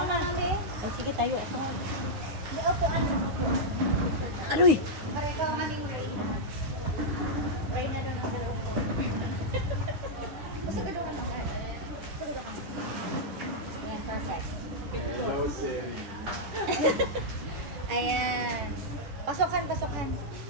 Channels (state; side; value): late; left; 10 ms